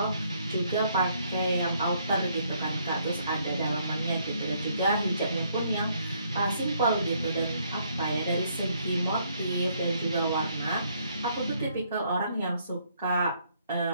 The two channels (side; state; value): both; inverted; correlation -0.69